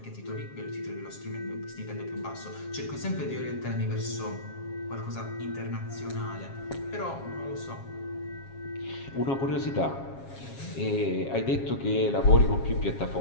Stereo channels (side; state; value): right; late; 7.4 ms